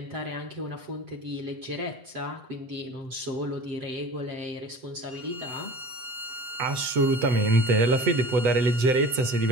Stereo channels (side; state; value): left; late; 7.8 ms